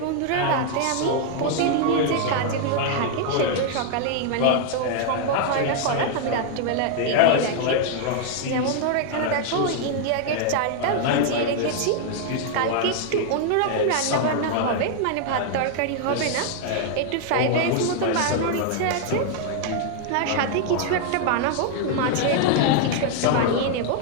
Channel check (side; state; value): both; different; correlation 0.00